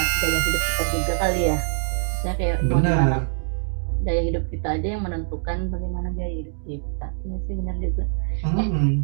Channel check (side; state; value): left; silent; digital silence